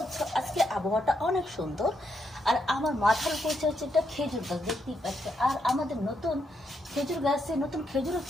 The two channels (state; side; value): normal; both; correlation 0.79